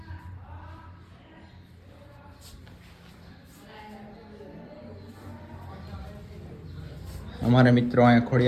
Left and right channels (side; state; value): both; identical; correlation 1.00